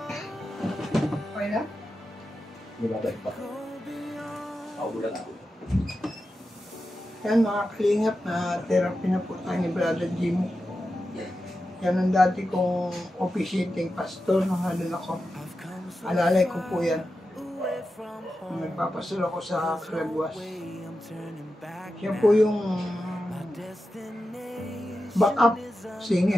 Okay na? Di ba ba pa? Paulang ako. Yan mga kalingap na therapy na po tayo ni Brother Jimmy. Yan ang dati kong officiating pastor nung halun ako. Alalay ko po yan. Nagpapastor ako sa Caraguas. Siya po yung backup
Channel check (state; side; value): normal; both; correlation 0.91